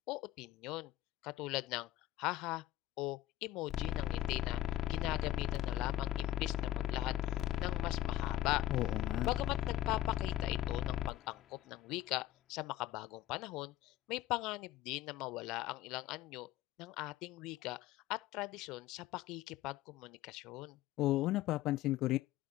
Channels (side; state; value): right; quieter; 13.7 dB